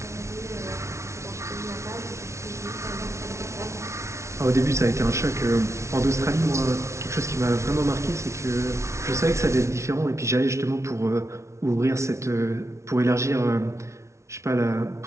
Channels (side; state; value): left; late; 0.13 ms